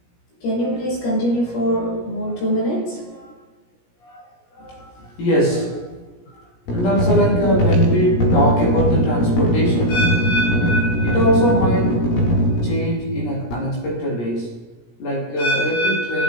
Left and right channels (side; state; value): right; late; 17 ms